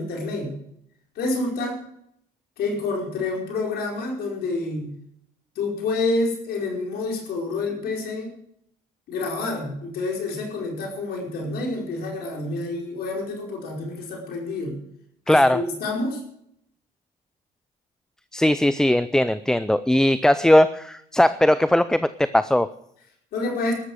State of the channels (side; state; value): both; normal; correlation 0.84